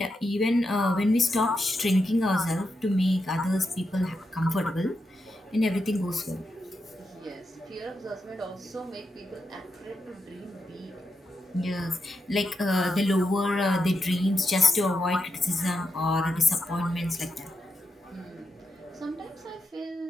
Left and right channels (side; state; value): both; normal; correlation 0.86